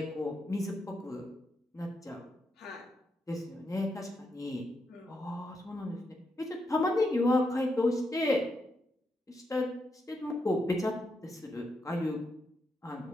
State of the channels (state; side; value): normal; both; correlation 0.83